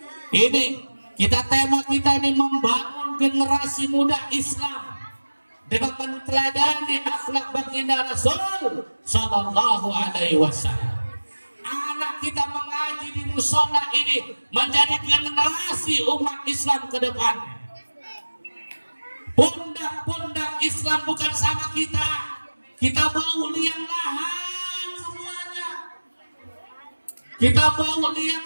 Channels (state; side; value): inverted; both; correlation -1.00